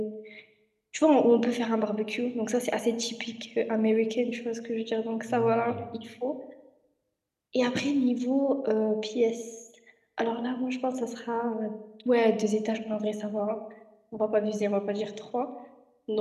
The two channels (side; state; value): both; identical; correlation 1.00